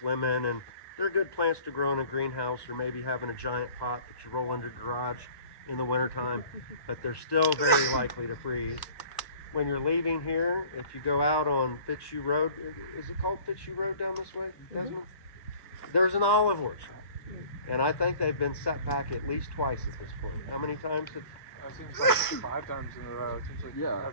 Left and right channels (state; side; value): late; right; 1.1 ms